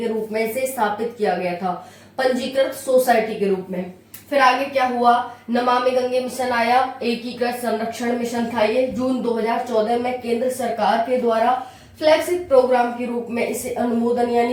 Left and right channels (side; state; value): both; identical; correlation 1.00